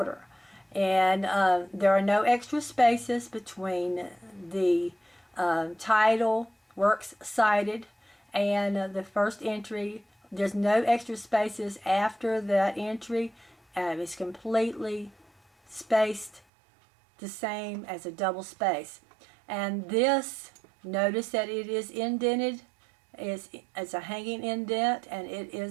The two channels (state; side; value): drops out; left; at 16.4 s